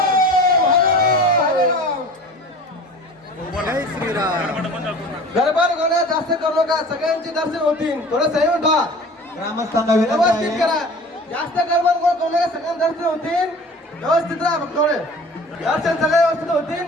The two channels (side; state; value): both; normal; correlation 0.42